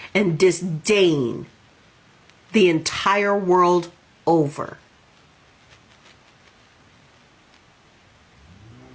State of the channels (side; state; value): both; identical; correlation 1.00